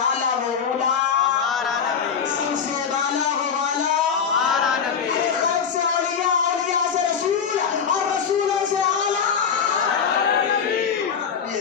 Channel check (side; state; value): right; quieter; 6.8 dB